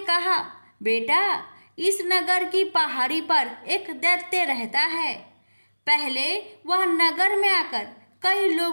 कहा, बेटा, इस नगर की पहाड़ी पर एक दैत्य रहता है। पहले वह नगर में आकर कई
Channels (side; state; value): both; inverted; correlation -1.00